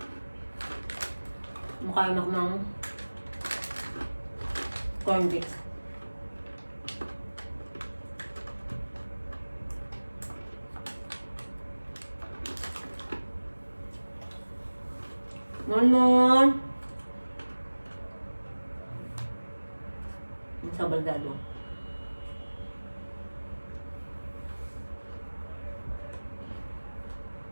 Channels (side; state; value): both; inverted; correlation -1.00